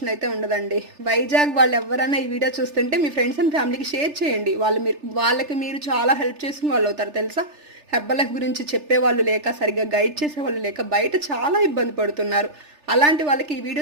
అయితే ఉండదండి. వైజాగ్ వాళ్ళు ఎవరైనా ఈ వీడియో చూస్తుంటే మీ ఫ్రెండ్స్ అండ్ ఫ్యామిలీకి షేర్ చేయండి. వాళ్ళకి మీరు చాలా హెల్ప్ చేసిన వాళ్ళు అవుతారు తెలుసా. హెర్బల్ లైఫ్ గురించి చెప్పేవాళ్ళు లేక, సరిగ్గా గైడ్ చేసేవాళ్ళు లేక బయట చాలా ఇబ్బంది పడుతున్నారు. అలాంటి వాళ్ళకి ఈ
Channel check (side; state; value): left; late; 3.4 ms